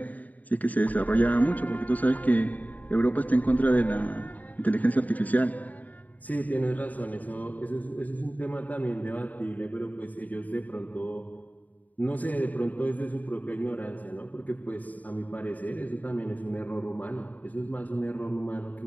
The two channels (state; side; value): late; right; 0.076 ms